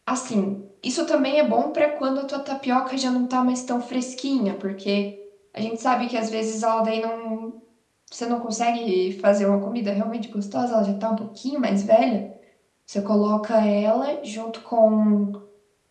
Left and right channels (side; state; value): both; identical; correlation 1.00